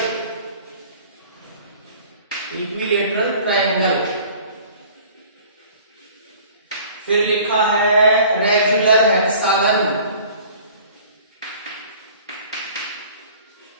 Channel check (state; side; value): inverted; both; correlation -0.49